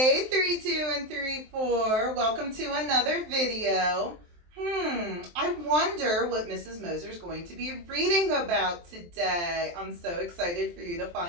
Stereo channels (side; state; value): left; late; 23 ms